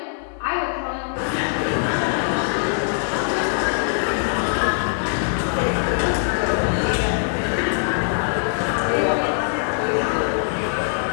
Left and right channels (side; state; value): right; silent; 63 dB below the other